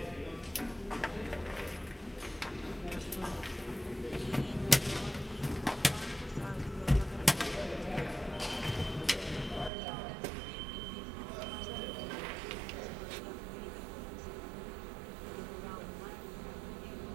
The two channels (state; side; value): drops out; left; at 9.7 s